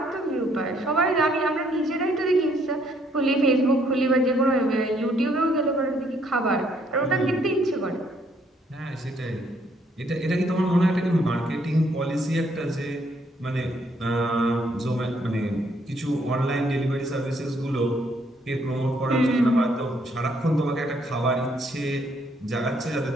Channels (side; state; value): both; normal; correlation 0.69